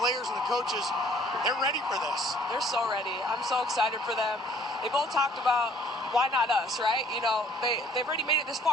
players and the coaches. They're ready for this. They're so ready. I'm so excited for them. They both talked about why not us, right? You know, they've already made it this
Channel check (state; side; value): normal; both; correlation 0.57